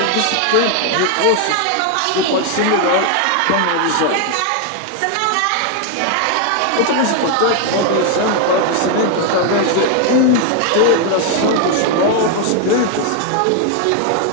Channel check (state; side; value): different; both; correlation 0.01